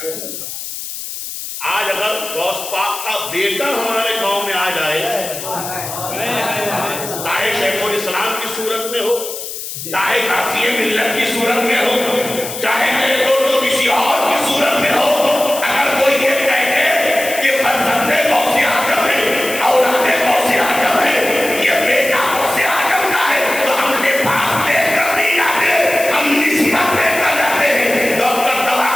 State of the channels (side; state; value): left; noise; hiss, 8 dB below the sound